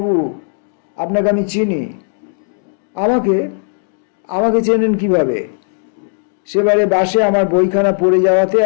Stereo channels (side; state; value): right; silent; digital silence